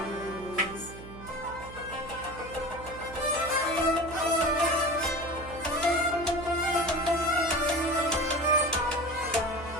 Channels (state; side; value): noise; right; hum, 14 dB below the sound